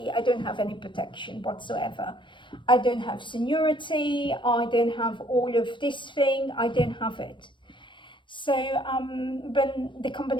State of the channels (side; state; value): right; late; 0.23 ms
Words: I don't have any protection whatsoever. I don't have seniority, I don't have all of this thing, I don't have it. So when the